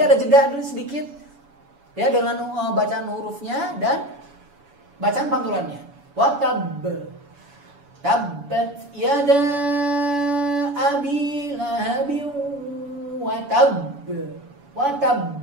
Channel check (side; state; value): left; late; 7.0 ms